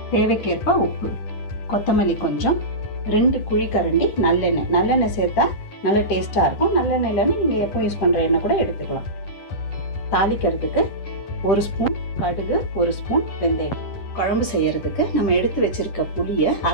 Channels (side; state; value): right; late; 9.7 ms